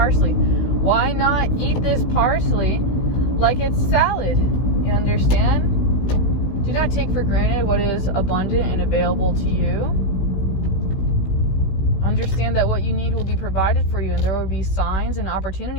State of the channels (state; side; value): late; right; 16 ms